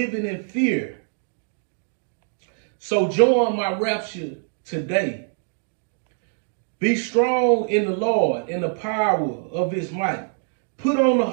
in fear. So join my rapture today. Be strong in the Lord and the power of his might. Put on the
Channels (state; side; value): silent; left; digital silence